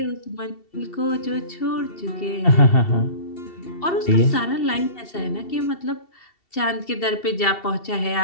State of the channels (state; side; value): late; right; 2.7 ms